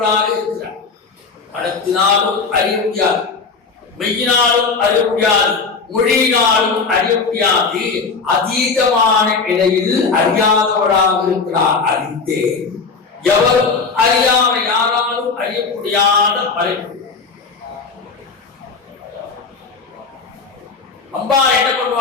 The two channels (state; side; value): quieter; right; 4.8 dB